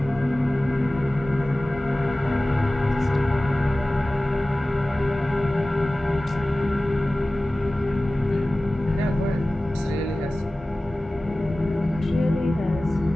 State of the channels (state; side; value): normal; both; correlation 0.97